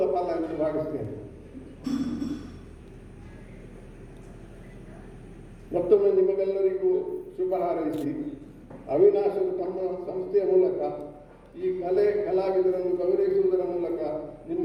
ಫಲ ಎಂದು ಭಾವಿಸ್ತೇನೆ. ಮತ್ತೊಮ್ಮೆ ನಿಮಗೆಲ್ಲರಿಗೂ ಶುಭ ಹಾರೈಸಿ, ಅವಿನಾಶರು ತಮ್ಮ ಸಂಸ್ಥೆಯ ಮೂಲಕ ಈ ಕಲಾವಿದರನ್ನು ಗೌರವಿಸುವುದರ ಮೂಲಕ ನಿಮ್ಮ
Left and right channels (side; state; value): both; identical; correlation 1.00